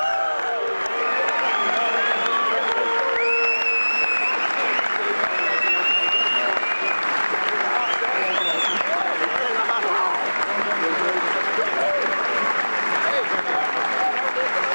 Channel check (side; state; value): both; inverted; correlation -1.00